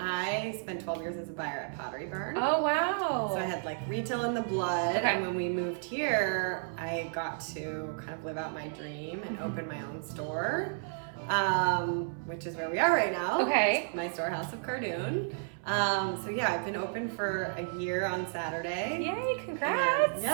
spent 12 years as a buyer at Pottery Barn. Oh, wow. So I had like retail in the blood, Okay. and when we moved here, I got to kind of live out my dream and open my own store, which is where we are right now. Okay. My store, House of Cardoon. So yeah, I've been open for a year on Saturday. Yay, congrats. And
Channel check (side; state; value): left; silent; 56 dB below the other